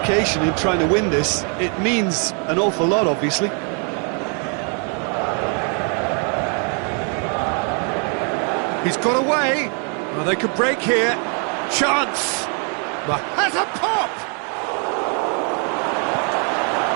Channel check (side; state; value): left; quieter; 39.4 dB